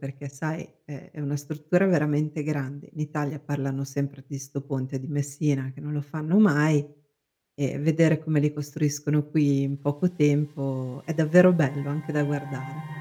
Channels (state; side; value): identical; both; correlation 1.00